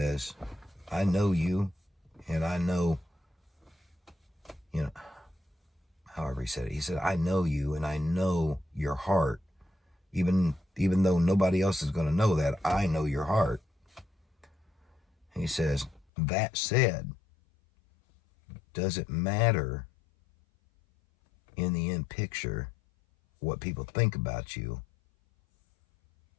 I know you, and I know, however he said it. He said, I know you, and I know your heart. Even though nobody else is going to know that, I know your heart. He says, that said, does it matter in the end picture what people think about you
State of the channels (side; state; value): right; drops out; at 16.1 s